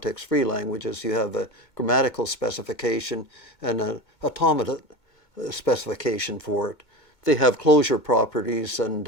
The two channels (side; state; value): right; late; 2.2 ms